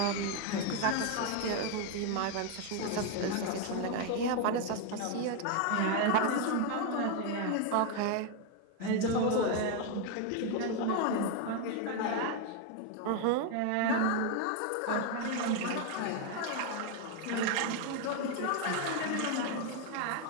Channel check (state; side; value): different; both; correlation 0.01